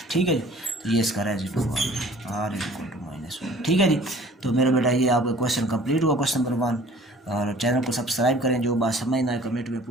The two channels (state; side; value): normal; both; correlation 0.50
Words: ठीक है जी। तो ये इसका रेजिड्यू आर इक्वल टू -1। ठीक है जी। तो मेरा बेटा ये आपका क्वेश्चन कंप्लीट हुआ, क्वेश्चन नंबर 1। और चैनल को सब्सक्राइब करें, जो बात समझ ना आए कमेंट में